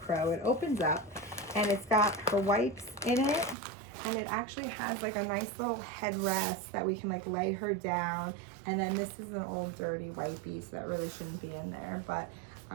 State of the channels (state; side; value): drops out; left; at 3.6 s